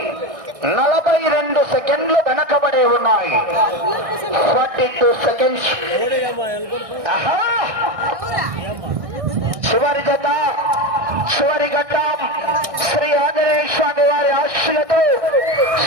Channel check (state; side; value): late; left; 1.6 ms